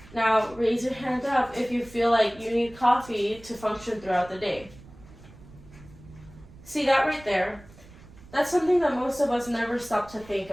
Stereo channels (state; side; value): noise; right; rumble, 21 dB below the sound